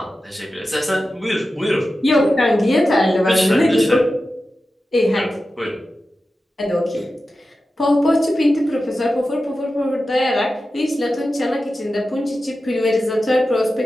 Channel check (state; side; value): normal; both; correlation 0.92